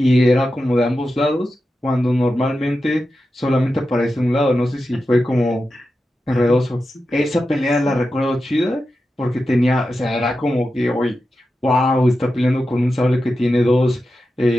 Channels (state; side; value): normal; both; correlation 0.91